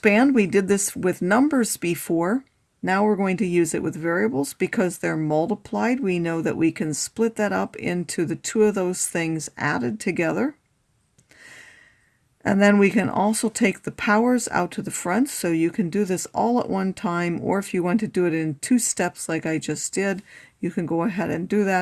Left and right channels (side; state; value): both; identical; correlation 1.00